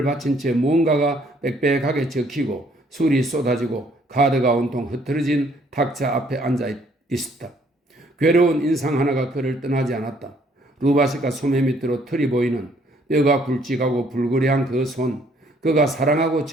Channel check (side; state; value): both; normal; correlation 0.64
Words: 받친 채 무언가가 빽빽하게 적히고 술이 쏟아지고 카드가 온통 흐트러진 탁자 앞에 앉아 있었다. 괴로운 인상 하나가 그를 떠나지 않았다. 루바시카 소매 밑으로 털이 보이는 뼈가 굵직하고 불그레한 그 손, 그가 사랑하고